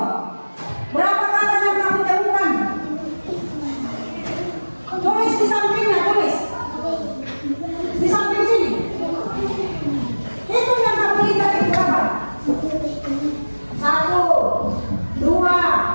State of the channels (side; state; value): both; inverted; correlation -1.00